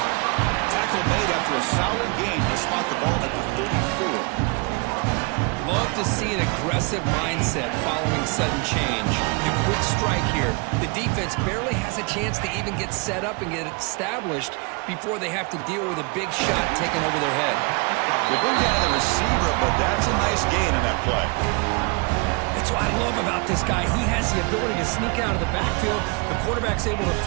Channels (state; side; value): quieter; left; 30.7 dB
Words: Tackle made after a solid gain to spot the ball at the 34. love to see an aggressive mindset following sudden change. The quick strike here. The defense barely has a chance to even get set up and get established before they have to deal with a big shot taken over their head. They bring down the receiver, but that's a nice gain on that play. That's what I love about this guy. He has the ability to sneak out of the backfield. The quarterback's able to